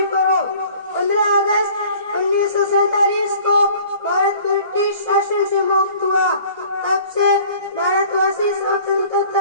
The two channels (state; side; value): inverted; both; correlation -0.50